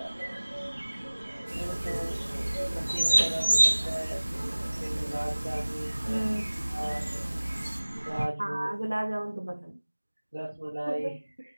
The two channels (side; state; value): both; inverted; correlation -1.00